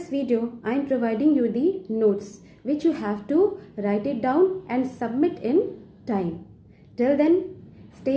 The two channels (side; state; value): both; identical; correlation 1.00